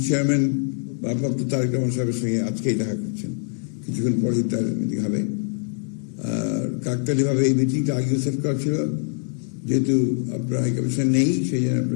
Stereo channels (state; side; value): silent; right; 58 dB below the other